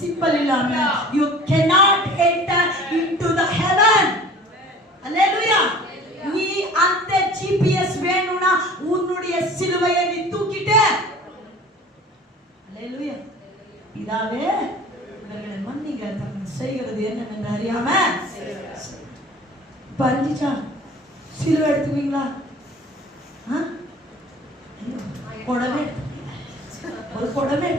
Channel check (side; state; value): both; normal; correlation 0.45